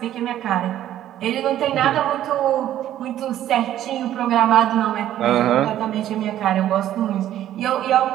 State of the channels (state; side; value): quieter; left; 12.2 dB